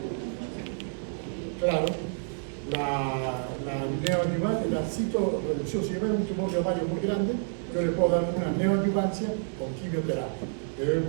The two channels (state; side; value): silent; left; digital silence